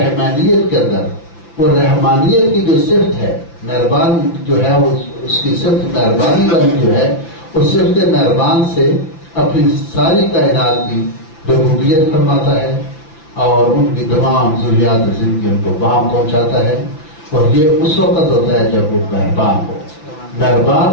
کے اندر وہ رحمانیت کی جو صفت ہے، مہربان جو ہے، وہ اس کی صفت مہربانی والی جو ہے، اس صفت مہربان سے اپنی ساری کائنات کی ربوبیت فرماتا ہے اور ان کی تمام ضروریات زندگی ان کو وہاں پہنچاتا ہے. اور یہ اس وقت ہوتا ہے جب وہ مہربان ہو. مہربان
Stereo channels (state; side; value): late; right; 5.9 ms